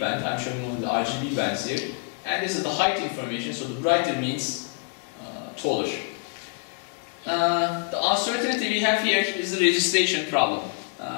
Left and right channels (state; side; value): quieter; right; 35.9 dB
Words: I'm showing only the RGB bands here. And this is the height information, so the brighter means taller. The uncertainty we have here is the registration problem.